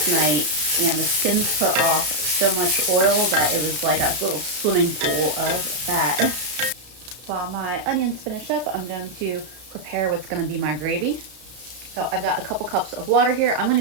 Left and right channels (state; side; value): late; left; 33 ms